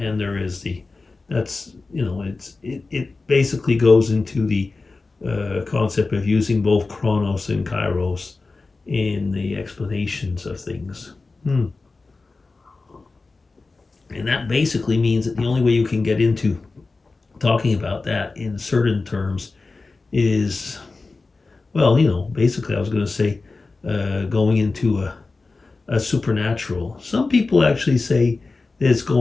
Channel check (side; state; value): right; quieter; 3.7 dB